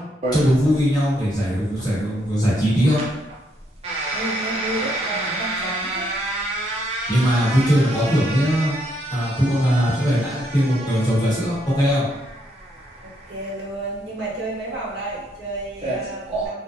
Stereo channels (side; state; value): both; normal; correlation 0.74